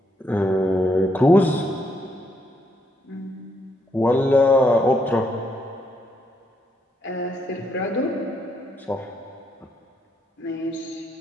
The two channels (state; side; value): normal; both; correlation 0.76